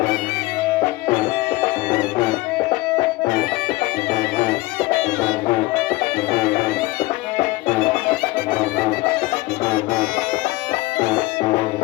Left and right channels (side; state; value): right; quieter; 20.2 dB